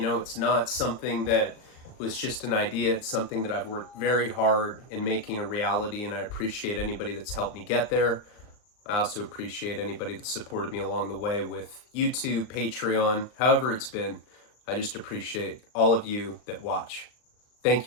it's not something that was just an idea. It's something that I've worked very hard in making a reality, and I appreciate anybody that's helped me get there. I also appreciate anybody that supported me along the way with YouTube, Patreon, however it's been. I just appreciate all of you that watch. Thank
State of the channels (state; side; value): late; right; 39 ms